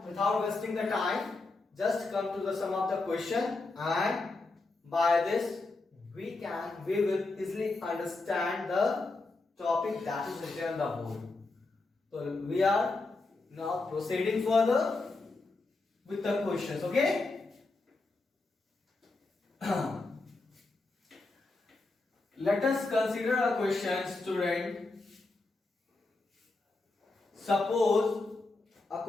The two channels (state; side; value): quieter; right; 3.4 dB